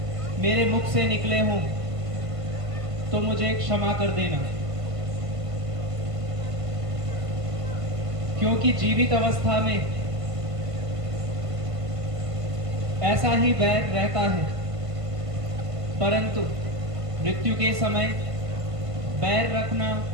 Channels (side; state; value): left; late; 1.5 ms